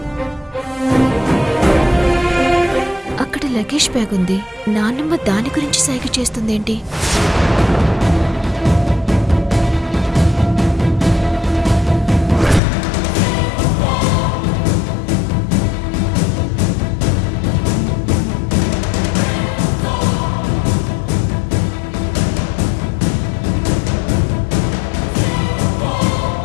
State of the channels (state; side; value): drops out; right; at 12.6 s